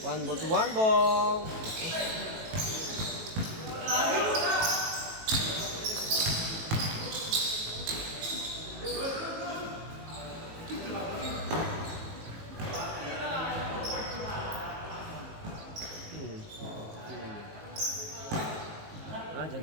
One ball to one ball. Ah,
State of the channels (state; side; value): late; left; 18 ms